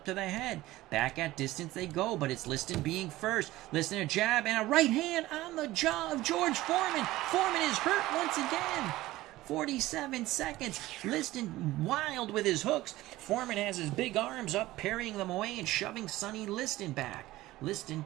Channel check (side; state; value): left; quieter; 17.1 dB